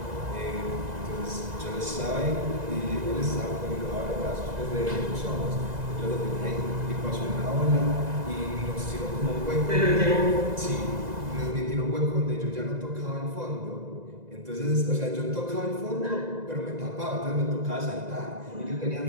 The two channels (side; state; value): left; late; 2.0 ms